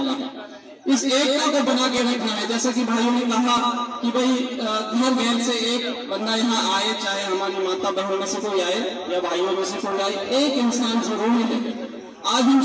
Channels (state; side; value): identical; both; correlation 1.00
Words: है। इस एकता को बना के रखना है। जैसे कि भाइयों ने कहा कि भाई घर घर से एक बंदा यहाँ आए, चाहे हमारी माता बहनों में से कोई आए या भाइयों में से कोई आए, एक इंसान जरूर मिले। आज हम